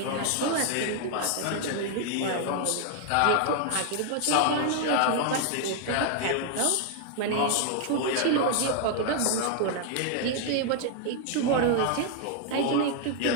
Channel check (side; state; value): both; different; correlation 0.00